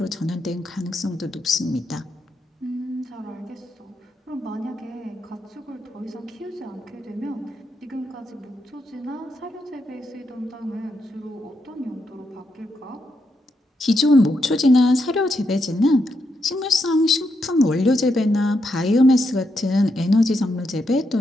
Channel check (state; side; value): normal; both; correlation 0.81